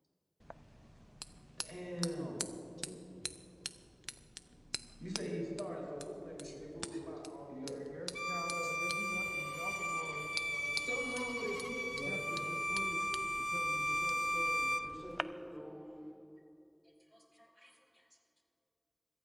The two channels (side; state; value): both; identical; correlation 1.00